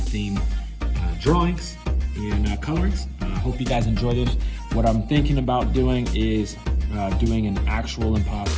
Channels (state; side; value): identical; both; correlation 1.00